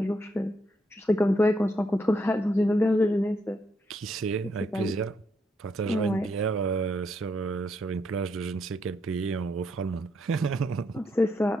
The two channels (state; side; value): normal; both; correlation 0.77